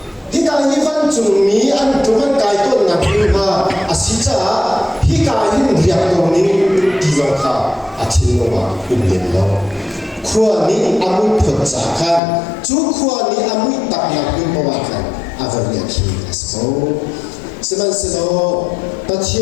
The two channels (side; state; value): right; drops out; at 12.2 s